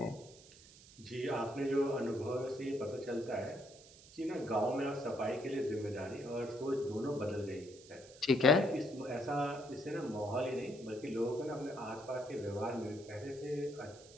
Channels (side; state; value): right; noise; hiss, 21 dB below the sound